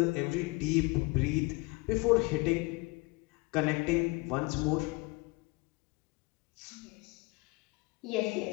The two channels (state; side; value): quieter; right; 25.3 dB